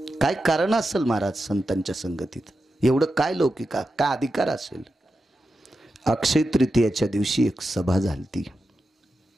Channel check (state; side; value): normal; both; correlation 0.90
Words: काय कारण असेल महाराज संतांच्या संगतीत, एवढं काय लौकिका काय अधिकार असेल. अक्षय तृतीयाच्या दिवशी एक सभा झाली,